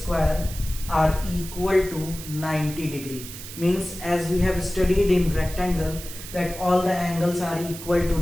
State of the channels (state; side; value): noise; right; hiss, 12 dB below the sound